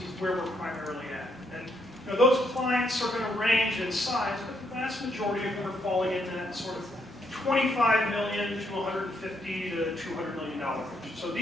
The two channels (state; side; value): normal; both; correlation 0.75